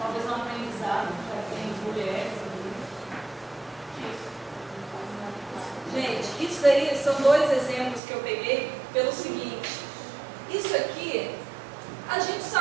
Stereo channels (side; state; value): left; drops out; at 8.0 s